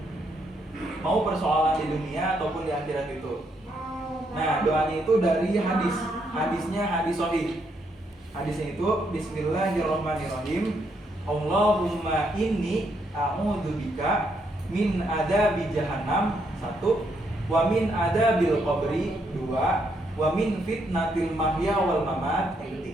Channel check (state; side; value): normal; both; correlation 0.75